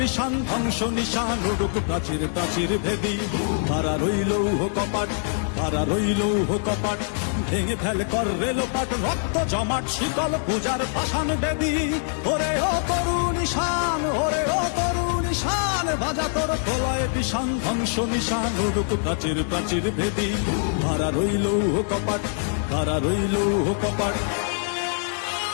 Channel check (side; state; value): right; silent; digital silence